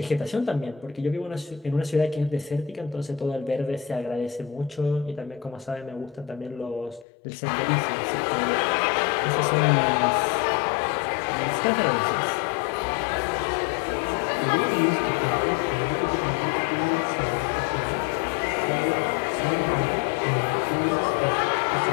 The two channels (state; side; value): drops out; right; at 7.1 s